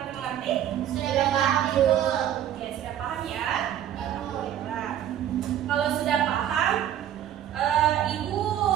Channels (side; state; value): left; quieter; 10.9 dB